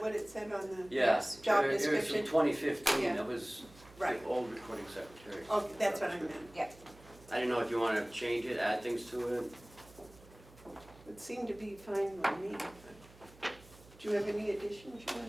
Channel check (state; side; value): noise; right; hum, 23 dB below the sound